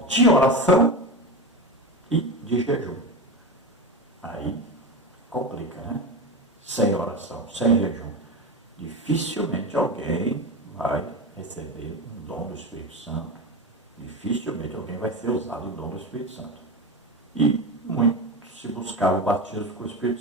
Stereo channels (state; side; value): normal; both; correlation 0.22